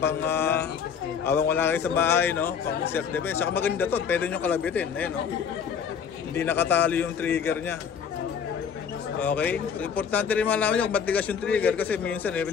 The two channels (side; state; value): right; quieter; 7.1 dB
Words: habang wala kayo sa bahay, no. Pang self-defense. Saka maganda to, pwede nyo kalabitin. Ayan, no. Hindi nakatali yung trigger nya. Okay? So, importante rin malaman nyo kung matigas yung trigger kasi minsan